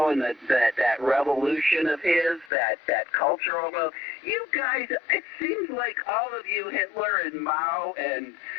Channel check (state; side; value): drops out; right; at 2.5 s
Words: that revolution of his, that cultural. You guys, it seems like all of you, Hitler and Mao and